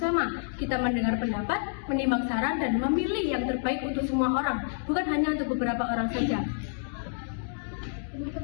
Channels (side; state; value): right; silent; digital silence